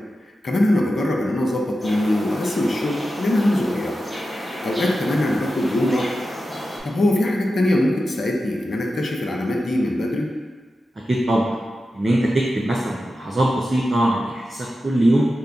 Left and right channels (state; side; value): normal; both; correlation 0.92